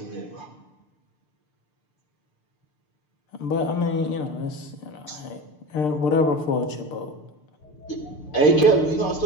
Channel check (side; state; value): right; late; 6.7 ms